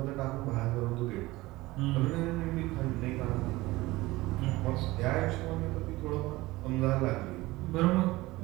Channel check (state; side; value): quieter; left; 19.6 dB